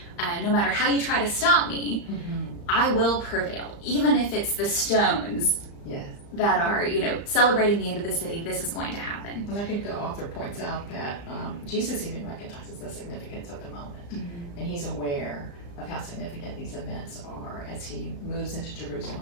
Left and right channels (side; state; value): right; late; 35 ms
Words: no matter how you try to stop me, I will prevail. Even if it's the stones that are, celebrating the end of the city, this is going to happen. And I think the author points out that Jesus even recognizes the significance of the moment. And he's aware of how significant these events are as he moves into